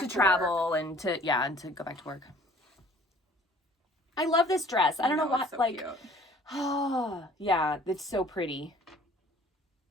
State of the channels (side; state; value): both; normal; correlation 0.53